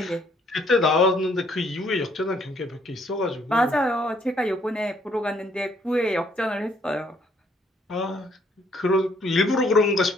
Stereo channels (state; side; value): normal; both; correlation 0.66